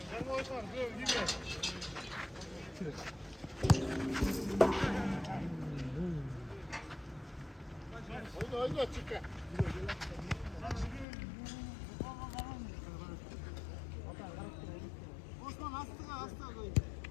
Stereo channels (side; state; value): right; drops out; at 11.1 s